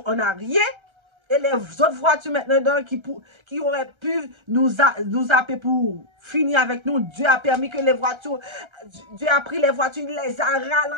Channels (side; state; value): left; late; 1.3 ms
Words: on n'a rien. Et les autres voitures maintenant qui auraient pu nous appeler pour finir avec nous, Dieu a permis que les voitures, Dieu a pris les voitures, il les a